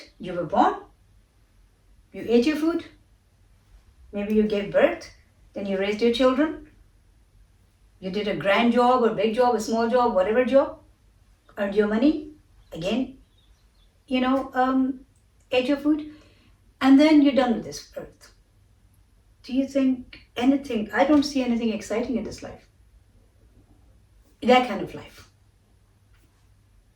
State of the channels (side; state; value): both; identical; correlation 1.00